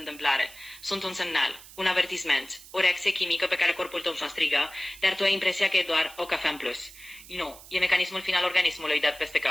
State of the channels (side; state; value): right; noise; hiss, 18 dB below the sound